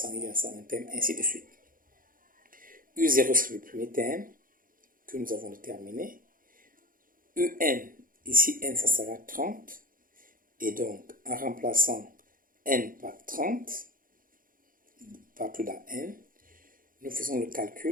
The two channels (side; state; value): left; late; 0.40 ms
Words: il y a 101 thèmes, ainsi de suite. U0 c'est le premier thème que nous avons déterminé. UN, ici n ça sera 30, et donc en remplaçant n par 30, partout dans n, nous faisons le